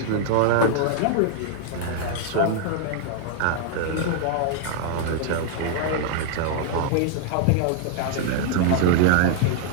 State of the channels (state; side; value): different; both; correlation 0.00